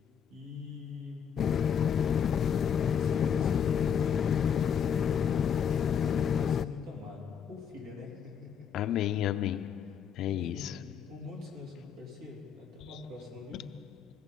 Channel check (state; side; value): quieter; right; 7.8 dB